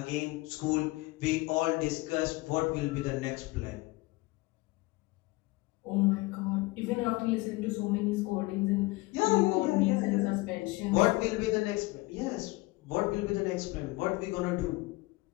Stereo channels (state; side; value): quieter; right; 22.2 dB